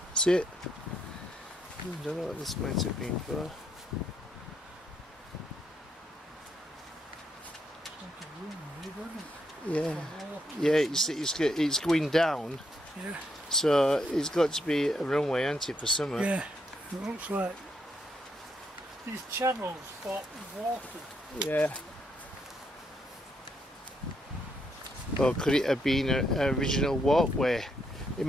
See it? I don't know what this might have been for. Yeah. Yeah, it's going down. Yeah. So it's got to be a runway, hasn't it, for summer? Yeah. It looks like these channels for water. Yeah. Or could it have been an original walkway? It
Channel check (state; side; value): normal; both; correlation 0.76